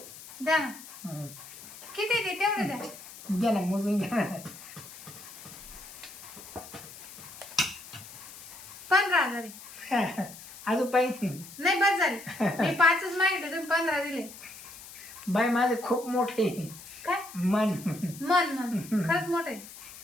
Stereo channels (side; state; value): left; noise; hiss, 16 dB below the sound